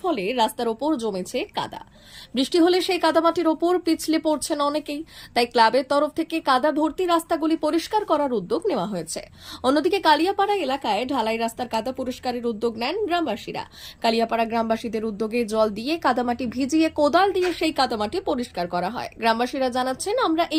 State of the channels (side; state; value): both; identical; correlation 1.00